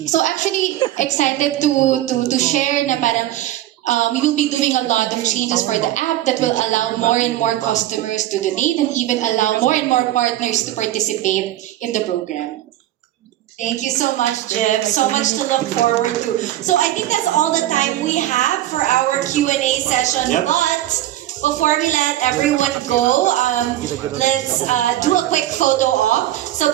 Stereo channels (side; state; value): left; quieter; 13.9 dB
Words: So actually, excited to share na parang we will be doing a lot of changes for the app that will allow more and more customers to donate and even allow more and more partners to participate in the program. Thank you so much, Jim. So much to look forward to. So I think that's all the time we have for our Q&A session. Yep. But before we let everyone go, let's do a quick photo op. So